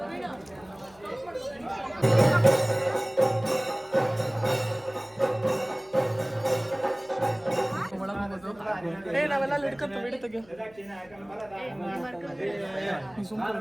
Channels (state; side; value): noise; left; hum, 27 dB below the sound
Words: ನಾವೆಲ್ಲ ಅಲ್ಲಿ ಹಿಡ್ಕೊಂತ ಬಿಡಿ ತೆಗಿಯೋ